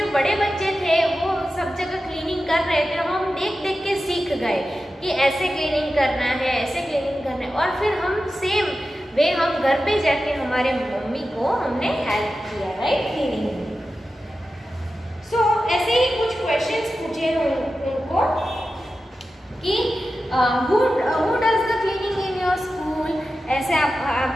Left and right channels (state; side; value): normal; both; correlation 0.92